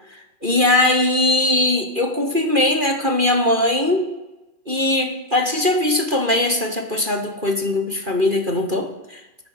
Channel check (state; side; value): late; left; 2.4 ms